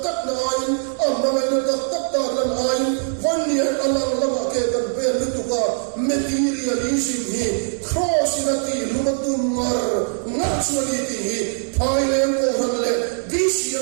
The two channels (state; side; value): silent; left; digital silence